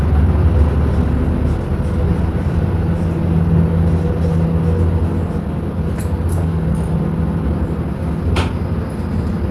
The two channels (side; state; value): both; identical; correlation 1.00